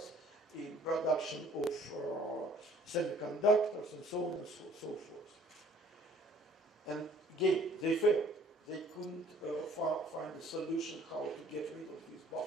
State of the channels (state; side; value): normal; both; correlation 0.55